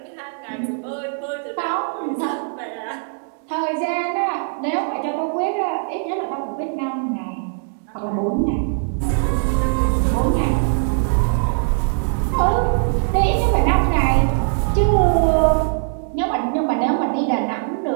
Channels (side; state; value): left; silent; digital silence